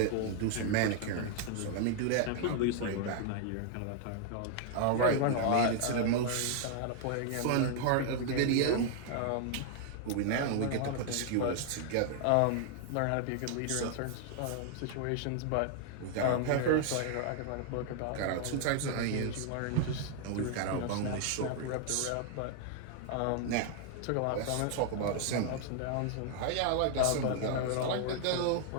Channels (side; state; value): both; different; correlation 0.00